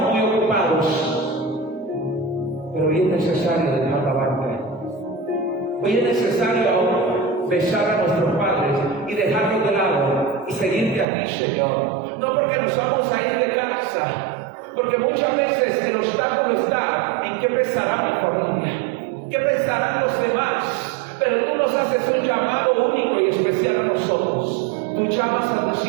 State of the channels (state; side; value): drops out; left; at 11.1 s